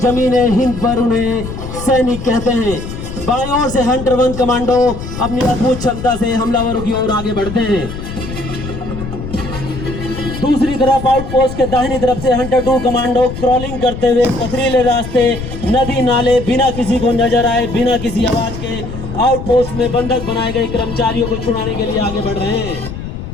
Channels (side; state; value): left; noise; rumble, 8 dB below the sound